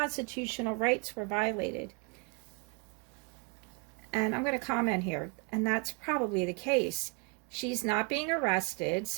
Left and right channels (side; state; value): left; quieter; 32.3 dB